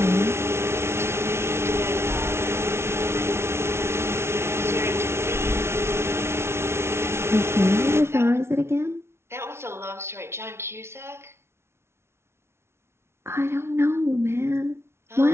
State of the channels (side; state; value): left; late; 0.12 ms